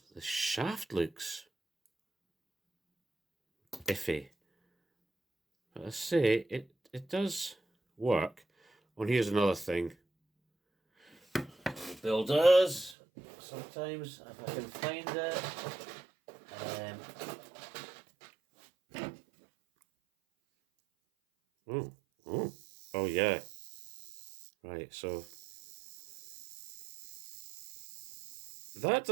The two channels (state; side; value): drops out; left; at 13.0 s